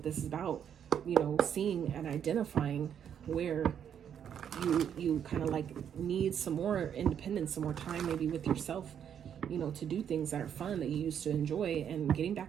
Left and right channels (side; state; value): left; quieter; 8.7 dB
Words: this is about, you know, seeing and identifying where you kind of like need some more independence, some more time maybe with yourself, you know, to do things that are fun that you used to enjoy and getting